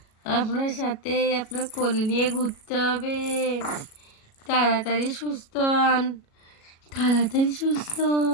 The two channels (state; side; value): late; right; 37 ms